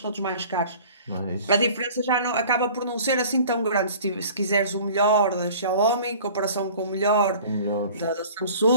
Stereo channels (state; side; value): inverted; both; correlation -0.46